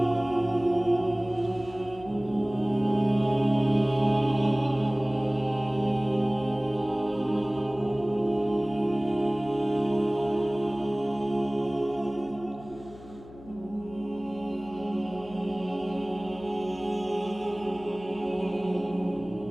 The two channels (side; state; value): left; noise; hum, 19 dB below the sound